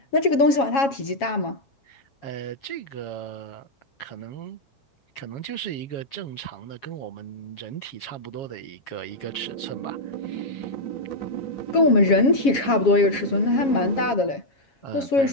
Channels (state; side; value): late; right; 7.3 ms